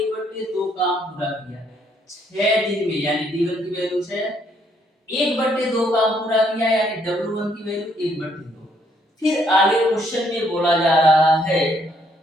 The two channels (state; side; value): normal; both; correlation 0.69